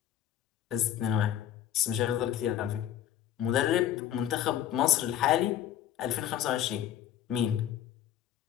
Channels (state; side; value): quieter; right; 11.1 dB